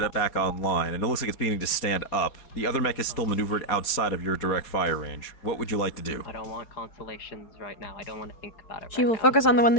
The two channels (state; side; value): late; right; 4.3 ms